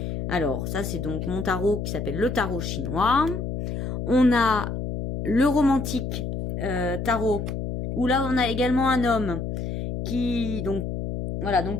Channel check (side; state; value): left; noise; hum, 4 dB below the sound